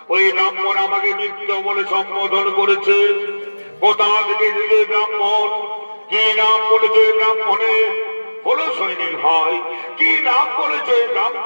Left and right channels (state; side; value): inverted; both; correlation -1.00